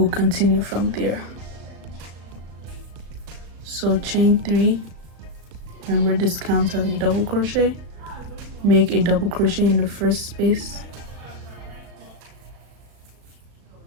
continue from there. So chain 3, remember this counts as a double crochet, make a double crochet in the first space,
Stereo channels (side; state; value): left; late; 36 ms